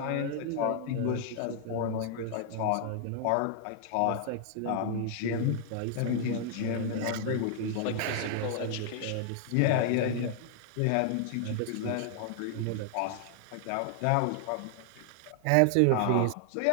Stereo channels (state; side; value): different; both; correlation 0.00